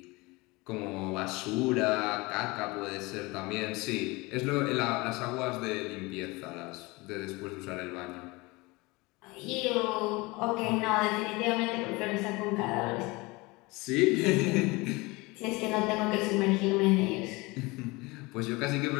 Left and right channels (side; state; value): right; quieter; 23.9 dB